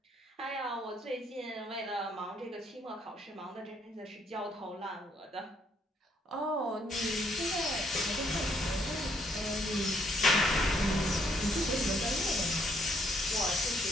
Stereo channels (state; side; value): normal; both; correlation 0.69